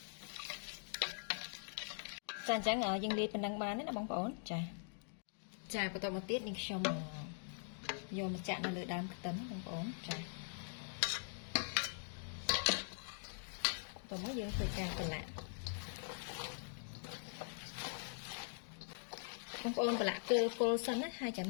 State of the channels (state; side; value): silent; right; digital silence